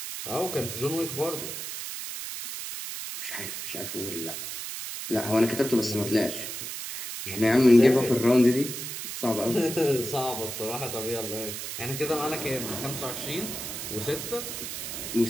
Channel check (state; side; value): noise; right; hiss, 6 dB below the sound